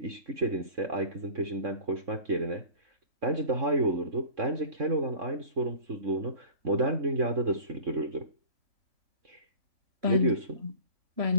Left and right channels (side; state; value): left; late; 3.6 ms